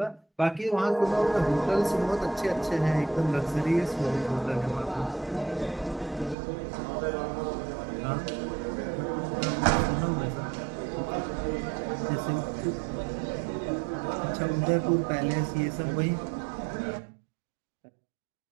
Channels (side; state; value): left; drops out; at 6.4 s